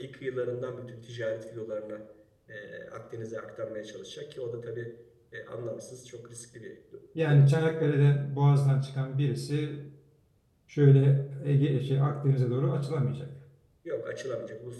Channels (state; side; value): identical; both; correlation 1.00